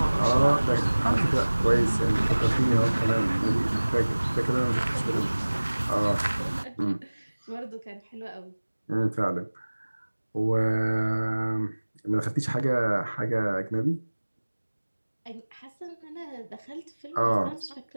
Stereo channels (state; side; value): inverted; both; correlation -1.00